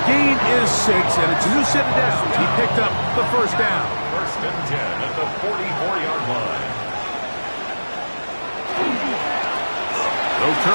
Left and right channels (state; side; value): inverted; both; correlation -1.00